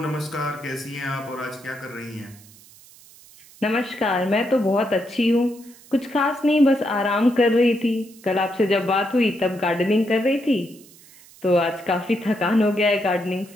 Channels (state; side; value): noise; right; hiss, 24 dB below the sound